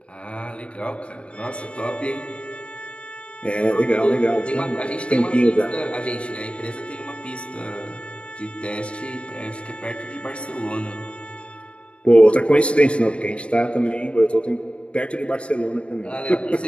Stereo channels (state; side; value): late; right; 0.060 ms